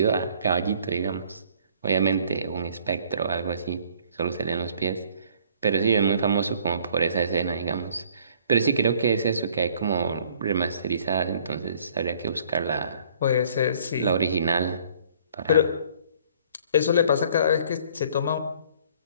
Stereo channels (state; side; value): inverted; both; correlation -0.57